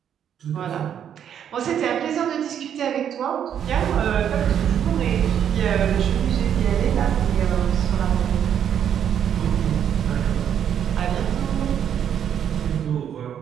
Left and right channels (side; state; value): left; quieter; 9.1 dB